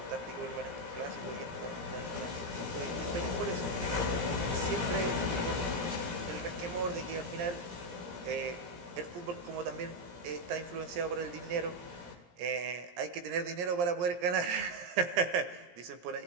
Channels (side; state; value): left; late; 17 ms